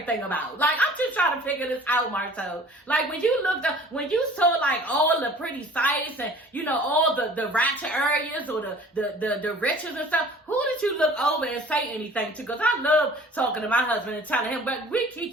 about? Like, I'm just trying to figure this out, Marcel. Like, when you saw like all the pretty sights and, you know, all the ratchet areas or the riches and stuff, who did you look over and say anything to? Because I love talking to my husband and telling him, but we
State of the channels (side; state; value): both; normal; correlation 0.48